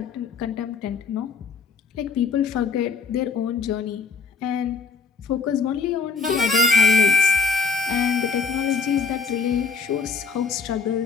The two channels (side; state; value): right; quieter; 4.9 dB